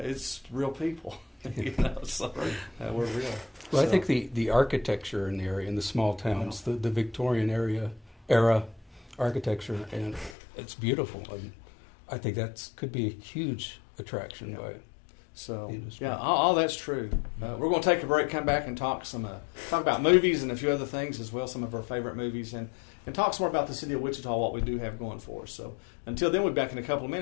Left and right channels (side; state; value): right; drops out; at 10.4 s